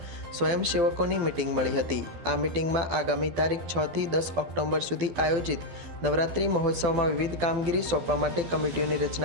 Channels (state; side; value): late; left; 12 ms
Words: સ્વયંસેવકોની મીટિંગ મળી હતી। આ મીટિંગમાં આગામી તારીખ 6 થી 10 ઓક્ટોબર સુધી આયોજિત નવરાત્રિ મહોત્સવમાં વિવિધ કામગીરી સોંપવા માટે કમિટીઓની